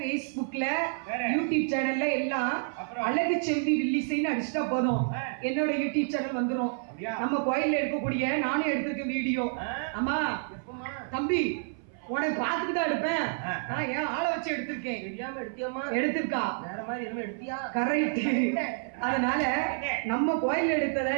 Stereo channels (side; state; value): left; silent; 57 dB below the other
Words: யூடியூப் சேனல்ல எல்லாம் அழகு செல்வி வில்லிசைன்னு அடிச்சுட்டா போதும், என்னோட யூடியூப் சேனல் வந்துரும். நம்ம கோயில்ல எடுக்கக்கூடிய நானும் எடுத்திருக்கேன் வீடியோ. ஆமா தம்பி, உனக்கு பார்த்துட்டு தான் எடுப்பேன். நான் ஏன் ஆளை வச்சு எடுத்திருக்கேன். தெரியாம எடுத்தியாமா? எடுத்திருக்கா வேற மாதிரி என்ன எடுத்தியா? கரெக்ட். அதனால நம்ம கோயில் எடுத்தத